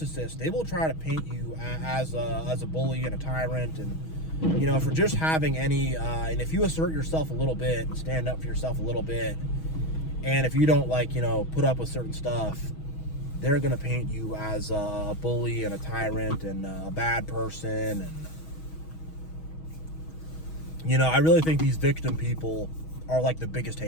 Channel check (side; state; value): right; late; 6.3 ms